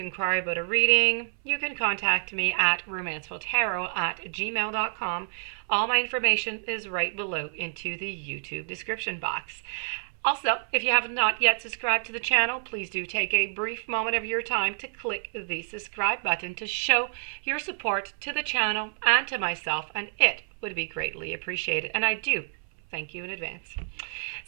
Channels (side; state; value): left; silent; 59 dB below the other